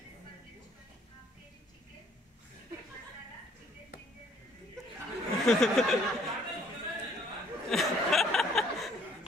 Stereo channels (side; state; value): both; normal; correlation 0.62